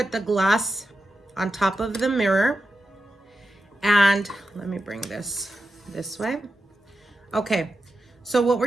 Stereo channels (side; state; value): both; normal; correlation 0.89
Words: the glass on top of the mirror. And let me bring this way. Okay. So what